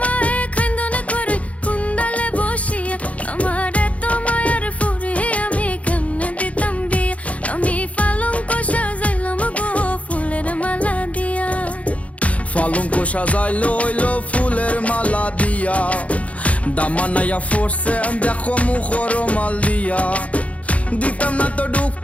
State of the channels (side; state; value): right; late; 0.066 ms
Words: মায়ে খান্দনে করে কুন্দালে বসিয়া। আমার এত মায়ার ফুরে আমি কেমনে দিতাম বিয়া। আমি পালঙ্ক সাজাইলাম গো ফুলের মালা দিয়া। পালঙ্ক সাজাইলো হইলো ফুলের মালা দিয়া। দামানাইয়া ফোরছে দেখো মুখর মাল দিয়া। দিতাম না তো